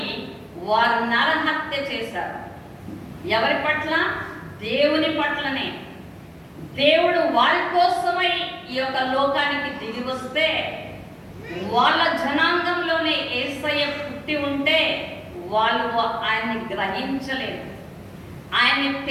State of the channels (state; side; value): identical; both; correlation 1.00